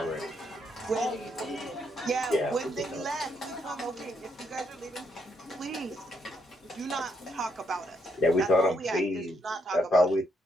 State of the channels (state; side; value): normal; both; correlation 0.75